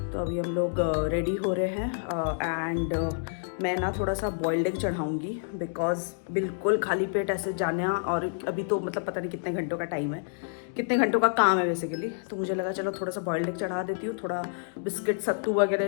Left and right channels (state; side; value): silent; right; digital silence